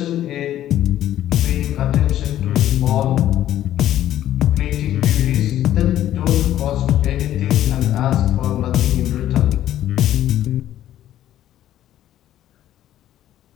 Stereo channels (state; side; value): quieter; right; 12.4 dB